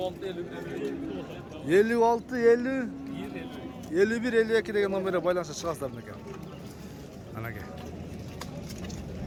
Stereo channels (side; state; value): both; identical; correlation 1.00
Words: 56 50 51 52 degan nomerga baylanishga chiqasizlar ekan. Mana aka.